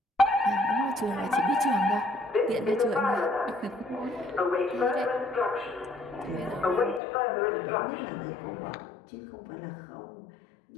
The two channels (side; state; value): right; drops out; at 7.0 s